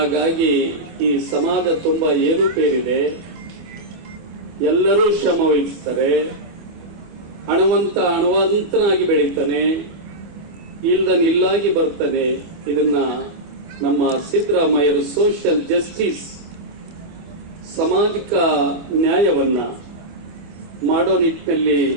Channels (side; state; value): left; late; 24 ms